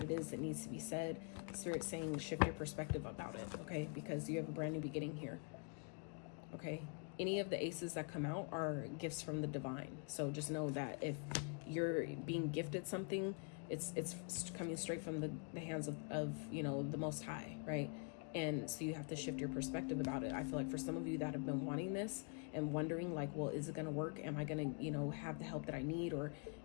it is that needs to be said, Spirit's saying shift your perspective about it. Okay, because you have a brand new beginning here. Okay, any of the aces that come out are gifts from the divine. So just know that if you're being gifted something, it's coming straight from the hands of you know, the Most High, right? And so you have to shift your perspective about it. I feel like for some of you that have been wanting this and wondering, like, well, is it going to work? Am I going to, you know, have the help that I need? Or,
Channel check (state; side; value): quieter; right; 39.1 dB